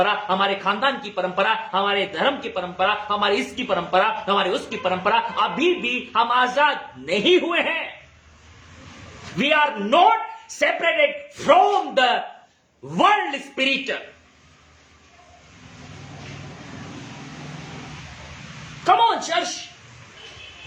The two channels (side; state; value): both; identical; correlation 1.00